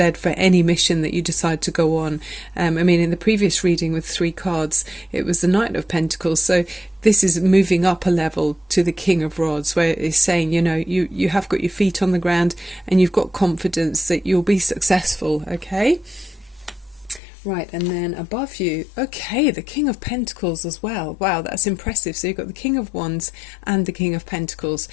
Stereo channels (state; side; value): drops out; right; at 17.2 s